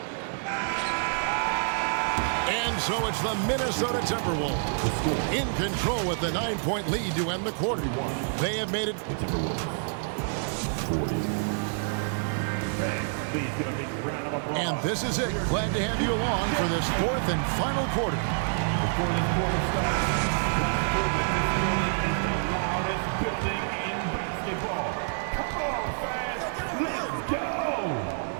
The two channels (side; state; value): left; silent; digital silence